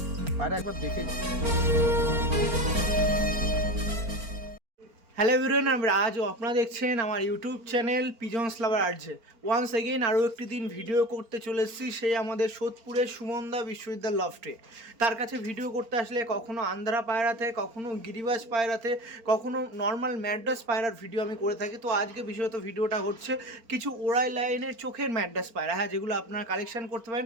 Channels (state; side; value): late; left; 4.4 ms